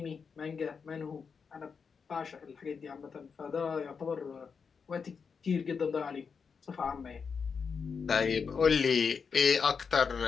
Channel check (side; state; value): right; quieter; 5.8 dB